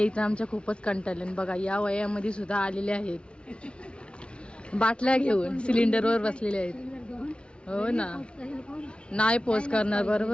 तर आमच्या खूपच कंटाळले. बघा या वयामध्ये सुद्धा आलेले आहेत, बाटल्या घेऊन सिलेंडरवर बसलेले आहेत. हो ना, नाही पोच करणार.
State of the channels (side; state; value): right; late; 0.057 ms